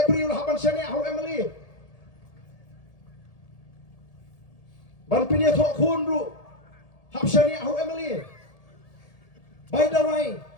priu la haban shane au emily ban pinya thok khun ru hab shane au emily bai dawai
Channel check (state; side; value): late; right; 1.8 ms